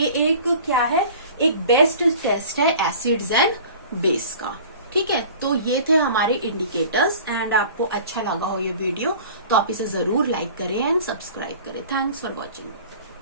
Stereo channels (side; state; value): both; inverted; correlation -0.44